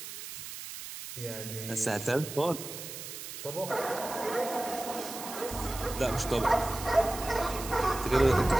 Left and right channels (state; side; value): noise; right; hiss, 10 dB below the sound